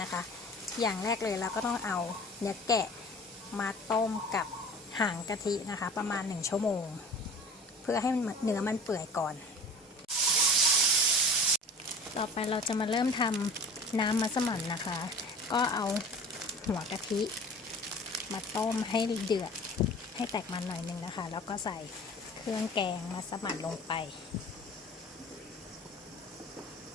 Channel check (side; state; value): both; normal; correlation 0.42